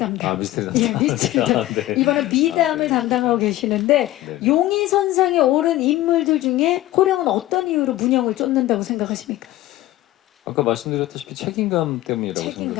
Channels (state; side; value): quieter; right; 15.7 dB